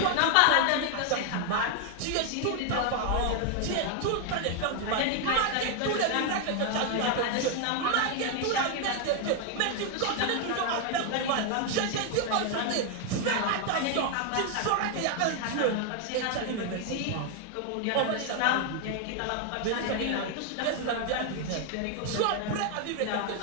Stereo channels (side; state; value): both; different; correlation 0.01